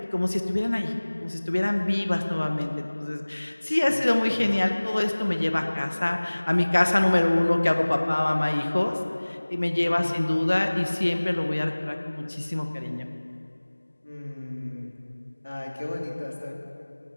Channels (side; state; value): both; inverted; correlation -1.00